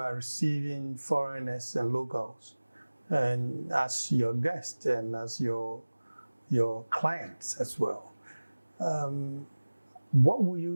receiving foreigners and locals, and as your guests and as your clients as well. What will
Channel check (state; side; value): inverted; both; correlation -1.00